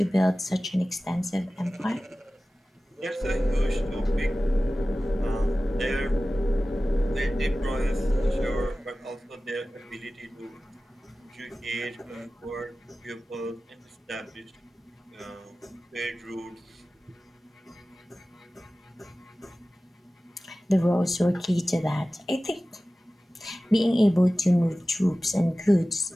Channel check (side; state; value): both; normal; correlation 0.96